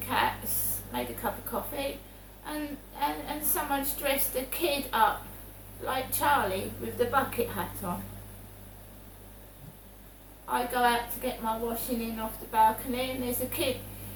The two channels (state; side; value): identical; both; correlation 1.00